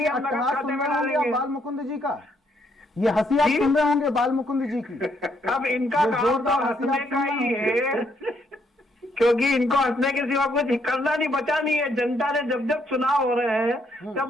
हम नगद खाते में डालेंगे। बाल मुकुंद जी का ये हंसी आप सुन रहे होंगे, बाल मुकुंद जी की। अब इनका काम तो हंसने का ही है, क्योंकि इनको हंसने के सिवा कुछ करना नहीं, बचा नहीं है। जनता ने जब जब चुनाव हो रहे हैं, तब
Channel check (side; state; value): both; normal; correlation 0.72